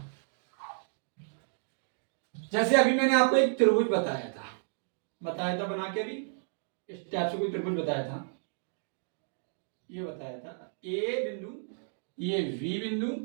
जैसे अभी मैंने आपको एक त्रिभुज बताया था बना के, अभी इस टाइप से कोई त्रिभुज बताया था, ये बताया था ए बिंदु, ये बी बिंदु,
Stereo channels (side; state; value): left; silent; digital silence